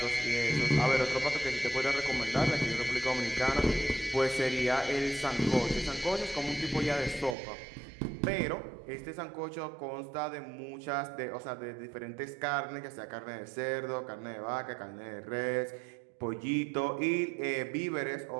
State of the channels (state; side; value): drops out; left; at 7.4 s